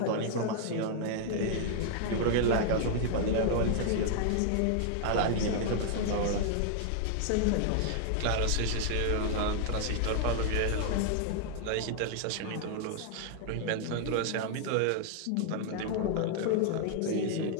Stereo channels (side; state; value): both; different; correlation -0.01